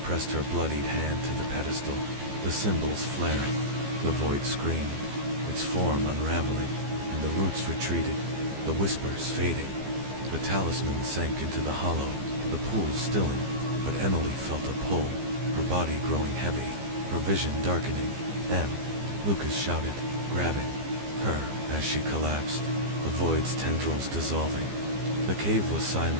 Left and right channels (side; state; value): left; late; 15 ms